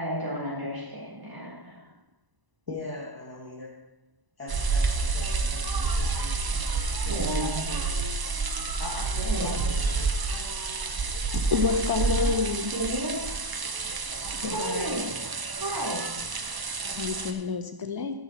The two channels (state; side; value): late; left; 1.0 ms